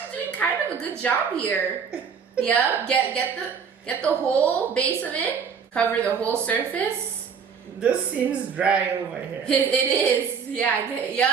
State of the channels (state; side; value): quieter; left; 6.4 dB